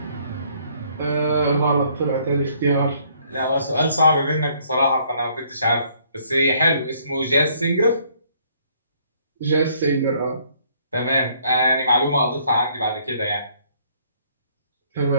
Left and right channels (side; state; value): both; inverted; correlation -0.64